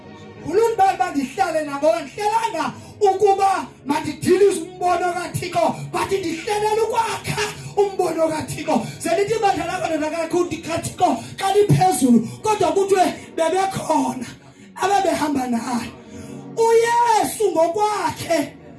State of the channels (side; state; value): both; identical; correlation 1.00